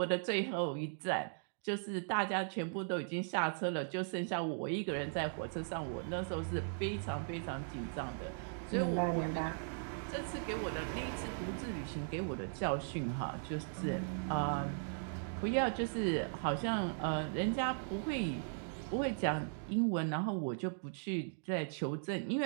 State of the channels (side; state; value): left; silent; digital silence